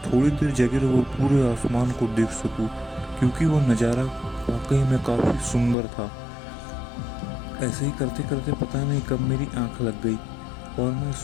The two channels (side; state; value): right; drops out; at 5.8 s